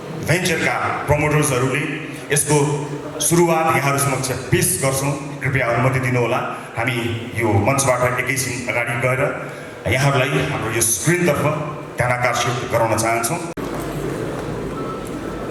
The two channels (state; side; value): identical; both; correlation 1.00